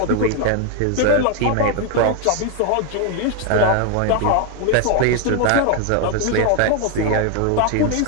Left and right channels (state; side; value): different; both; correlation 0.01